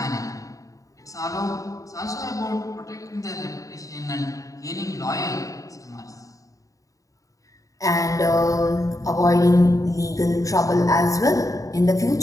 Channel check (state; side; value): late; right; 0.16 ms